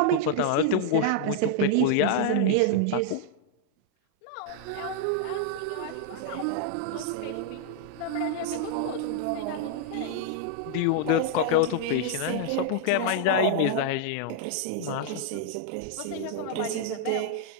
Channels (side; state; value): both; different; correlation -0.01